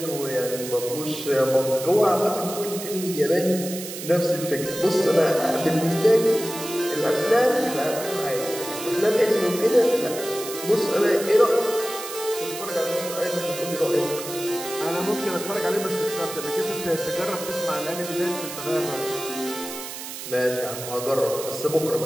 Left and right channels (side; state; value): right; noise; hiss, 9 dB below the sound